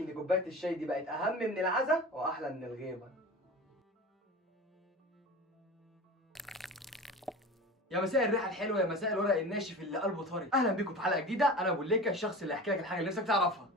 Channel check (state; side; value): normal; both; correlation 0.34